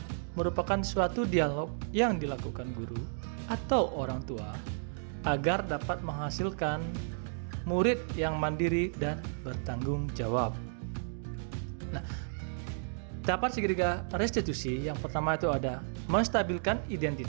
merupakan suatu dialog yang dilakukan guru atau orang tua agar dapat menghasilkan murid yang mandiri dan bertanggung jawab. Nah, dapat segitiga restitusi yang pertama itu ada menstabilkan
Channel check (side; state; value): left; silent; digital silence